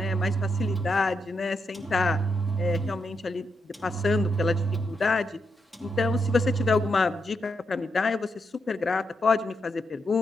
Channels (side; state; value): both; normal; correlation 0.82